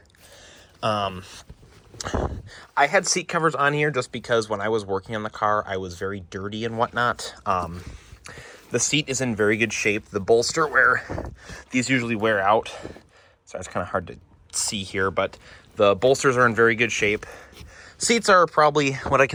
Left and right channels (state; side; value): identical; both; correlation 1.00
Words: I had seat covers on here just because when I was working on the car, I was very dirty and whatnot. The seat is in very good shape. The bolster where these usually wear out, so it's kind of hard to see here, but the bolsters are in very good shape. Seats are probably what I